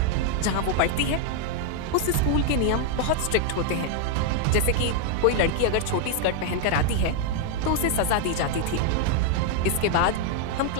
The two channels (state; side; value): different; both; correlation 0.00